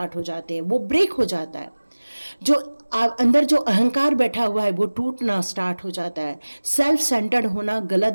हो जाते हैं। वो ब्रेक हो जाता है। जो अंदर जो अहंकार बैठा हुआ है वो टूटना स्टार्ट हो जाता है। सेल्फ सेंटर्ड होना गलत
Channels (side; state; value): both; inverted; correlation -1.00